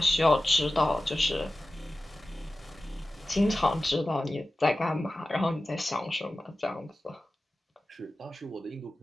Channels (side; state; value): both; normal; correlation 0.95